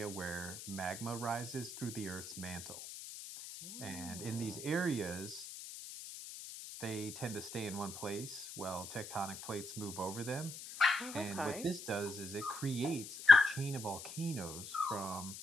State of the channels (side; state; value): left; noise; hiss, 11 dB below the sound